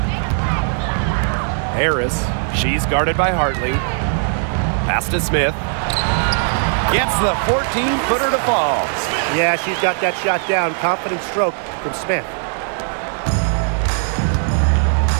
Harris. She's guarded by Hartley. Pass to Smith. Gets the 14-footer to fall. Yeah, she's got that shot down. Confident stroke from Smith.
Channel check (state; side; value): silent; left; 57 dB below the other